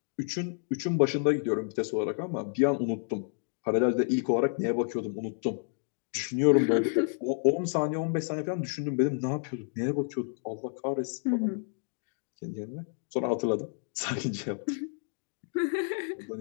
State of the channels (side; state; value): right; silent; 58 dB below the other